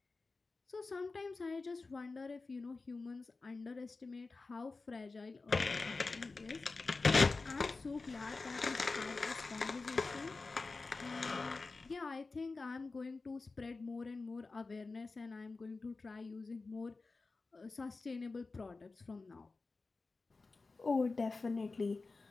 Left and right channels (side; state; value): right; quieter; 3.8 dB